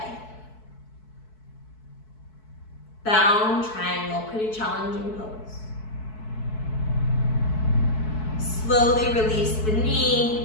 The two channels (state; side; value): late; right; 4.6 ms